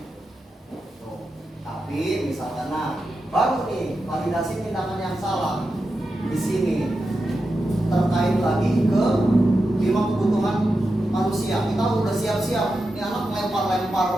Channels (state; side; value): normal; both; correlation 0.90